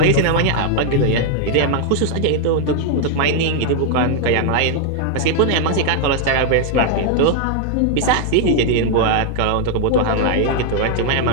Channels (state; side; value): different; both; correlation 0.00